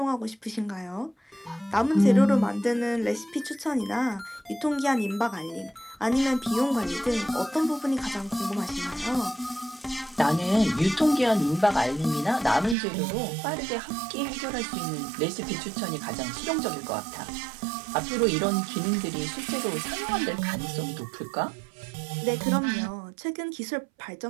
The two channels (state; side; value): drops out; left; at 12.8 s